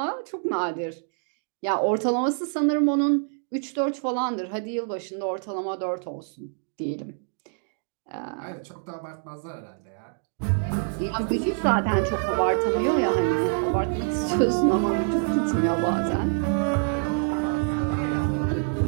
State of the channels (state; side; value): silent; left; 60 dB below the other